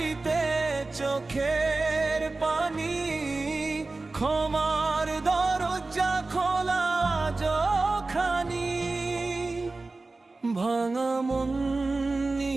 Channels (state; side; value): quieter; left; 3.4 dB